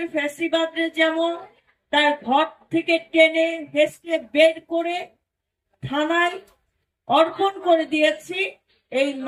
ফ্যাসিবাদরে যেমন তার ঘর থেকে টেনে হেসড়ে বের করে থানায় অর্পণ করে দিয়েছি, এই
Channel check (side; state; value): both; identical; correlation 1.00